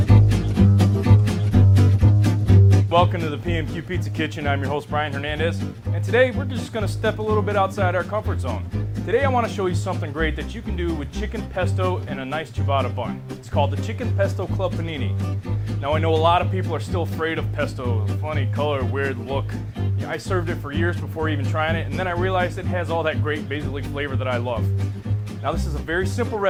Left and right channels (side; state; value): both; identical; correlation 1.00